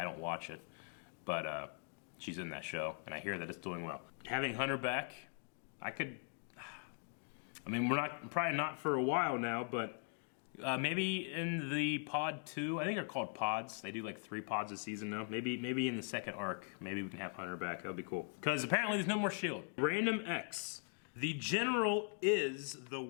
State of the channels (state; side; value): silent; right; 51 dB below the other